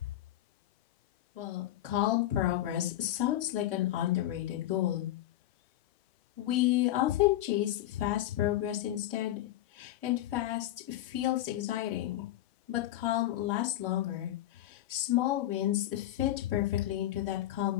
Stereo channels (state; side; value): quieter; right; 13.9 dB